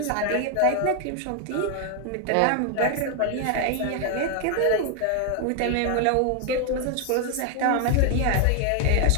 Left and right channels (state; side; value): different; both; correlation 0.00